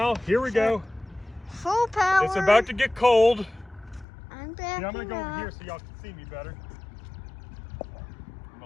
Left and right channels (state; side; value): drops out; right; at 4.0 s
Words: here we go. Full power. It's about to get cold. I'm backing I'm gonna go over up. here so y'all can see me better. I'm